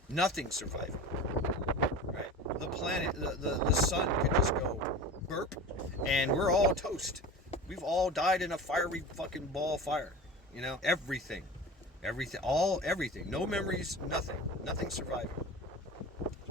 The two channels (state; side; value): normal; both; correlation 0.34